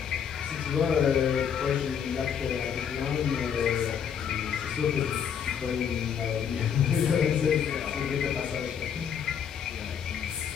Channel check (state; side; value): quieter; right; 7.9 dB